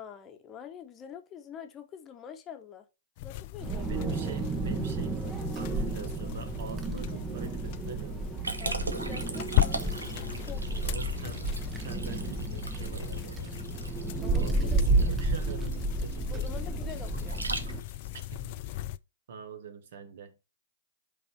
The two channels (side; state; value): both; normal; correlation 0.12